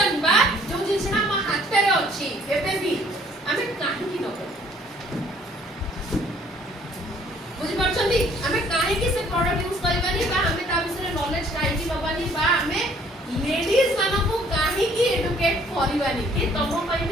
बा जो जिंसना हम हाथ रे अछि एबे भी हमें काहे की न बुझि परछंदी हमें काहे की से प्रोडक्ट यूज करबानी बा हमें ता विषय नॉलेज काहे की नबानी बा हमें लेडीज मानो को काहे की एडुकेट करबानी कि तमो पई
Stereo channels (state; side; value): normal; both; correlation 0.59